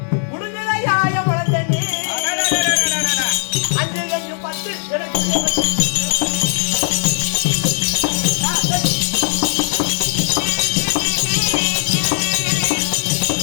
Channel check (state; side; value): silent; right; digital silence